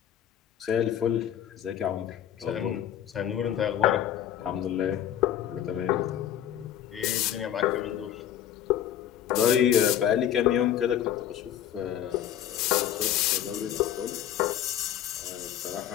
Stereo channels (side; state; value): right; quieter; 10.6 dB